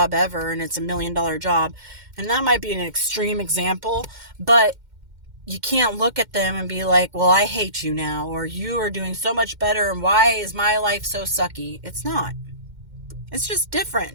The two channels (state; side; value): late; left; 2.1 ms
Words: ever, and it's $1 million job, and that might be an extreme example, but you can't look at them and be like, well, I hate you now, or you are doing so much better, and why is my life so sucky? It's not. It's just